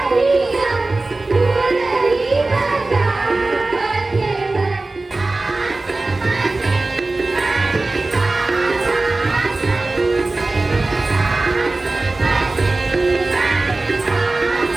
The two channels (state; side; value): quieter; left; 3.2 dB